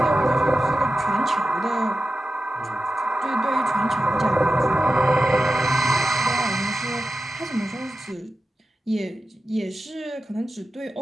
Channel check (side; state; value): both; normal; correlation 0.92